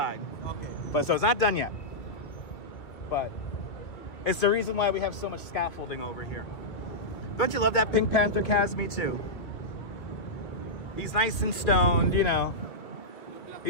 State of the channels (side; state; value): right; late; 2.4 ms